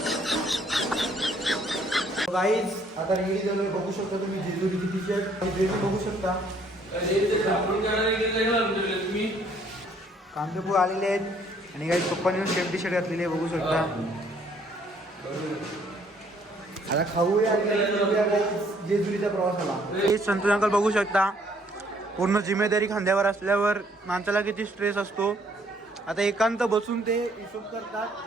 गाईज आता रेडी झालोय. बघू शकता तुम्ही जेजुरीची टी-शर्ट बघू शकता. कांदेपूर आलेले आहेत आणि काही पप्पांनी सेम टी-शर्ट घातलेली आहे, बघू शकता. आता खाऊया जेजुरीच्या प्रवासाला. संतोष अंकल बघू शकता, पूर्ण जिम्मेदारी खांद्यावर असल्यावर माणसाला किती स्ट्रेस असतो. आता एकांत बसून ते हिशोब करतात.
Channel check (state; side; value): normal; both; correlation 0.64